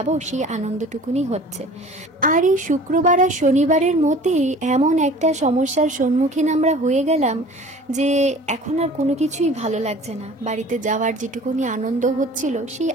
সেই আনন্দটুকুনি হচ্ছে। আর এই শুক্রবার আর শনিবারের মধ্যেই এমন একটা সমস্যার সম্মুখীন আমরা হয়ে গেলাম যে এখন আর কোনো কিছুই ভালো লাগছে না। বাড়িতে যাওয়ার যেটুকুনি আনন্দ হচ্ছিল, সেই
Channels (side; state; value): both; normal; correlation 0.45